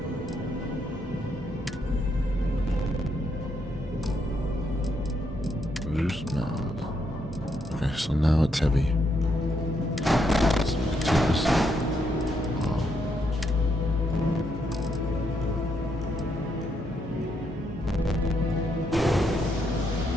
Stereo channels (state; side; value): normal; both; correlation 0.77